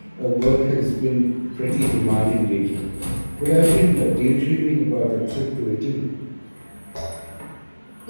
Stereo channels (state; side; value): inverted; both; correlation -1.00